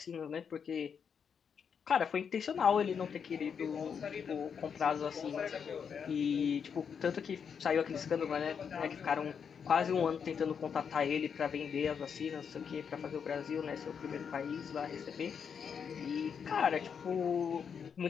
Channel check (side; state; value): right; quieter; 6.9 dB